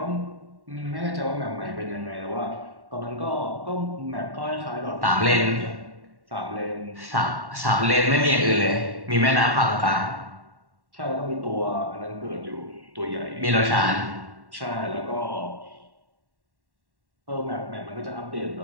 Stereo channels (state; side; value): late; left; 1.1 ms